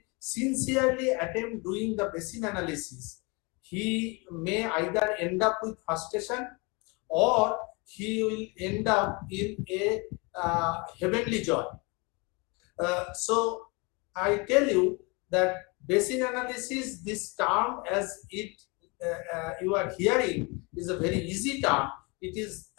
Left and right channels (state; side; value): quieter; right; 29.1 dB